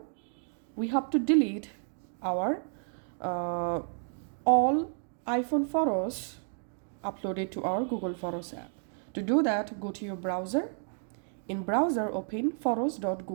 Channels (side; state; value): left; silent; 57 dB below the other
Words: we have to delete our all iPhone photos uploaded to our Google Photos app. To do that, go to your browser. In browser, open